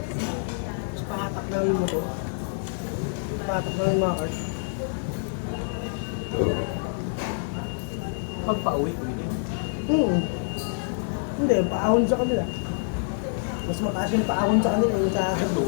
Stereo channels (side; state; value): right; silent; digital silence